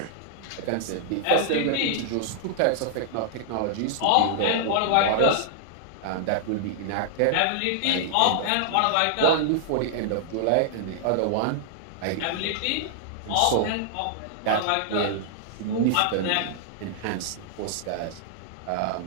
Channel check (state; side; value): different; both; correlation -0.01